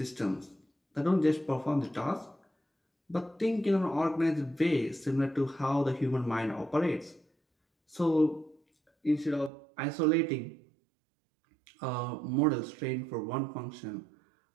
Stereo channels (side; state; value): left; drops out; at 9.5 s